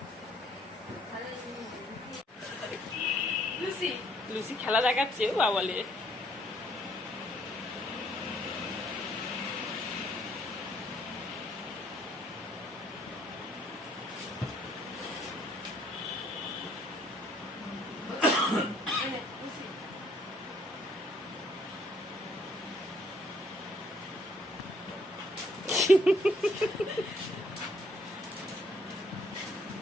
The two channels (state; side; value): normal; both; correlation 0.65